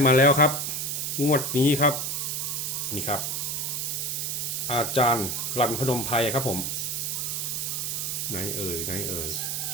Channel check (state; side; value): noise; right; hiss, 1 dB below the sound